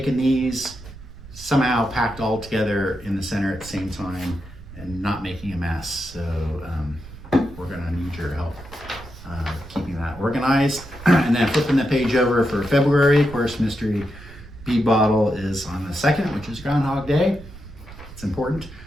these somehow packed all together in the center at the same time and not making a mess. So we're going to need your help keeping that organized. And then flipping the page over for February, of course, mystery bead bottle is on the 2nd, which is Groundhog Day. It's important.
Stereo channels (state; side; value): noise; right; rumble, 16 dB below the sound